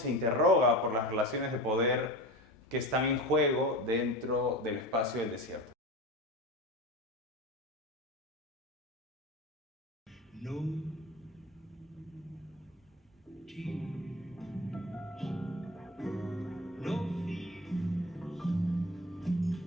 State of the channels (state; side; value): normal; both; correlation 0.30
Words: interroga por las relaciones de poder que están en juego dentro del espacio del desierto. No tears, no fears.